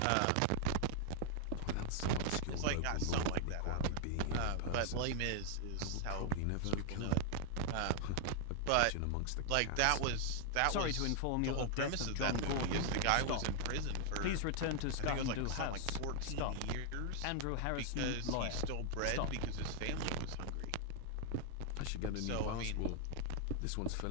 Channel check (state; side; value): different; both; correlation 0.00